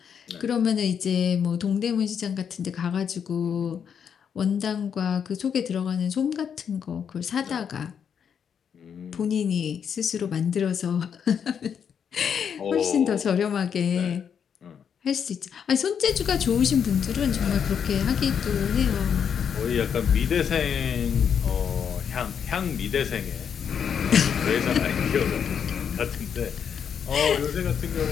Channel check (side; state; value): right; quieter; 7.6 dB